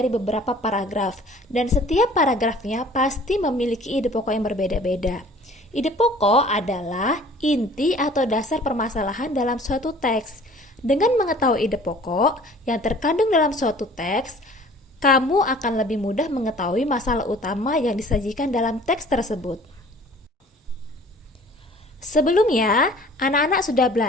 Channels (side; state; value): both; normal; correlation 0.49